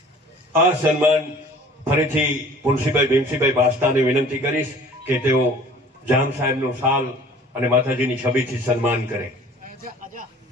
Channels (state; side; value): normal; both; correlation 0.48